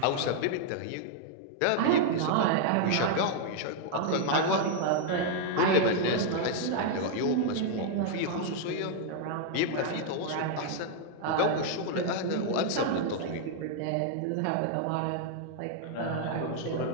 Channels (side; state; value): both; different; correlation 0.00